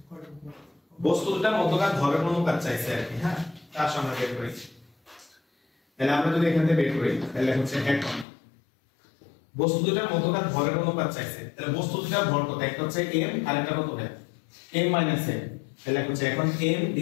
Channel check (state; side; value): drops out; right; at 8.2 s